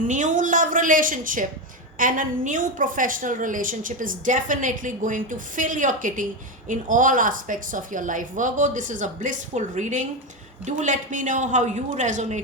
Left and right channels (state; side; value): normal; both; correlation 0.13